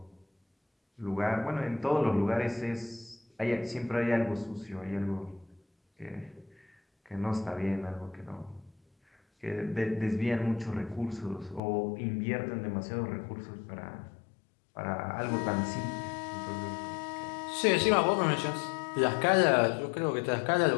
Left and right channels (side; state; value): right; drops out; at 11.6 s